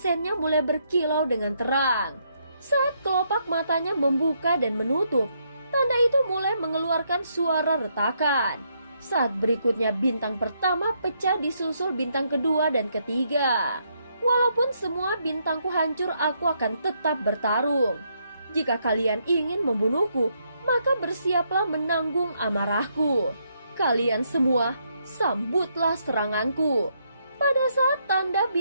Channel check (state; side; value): inverted; both; correlation -0.75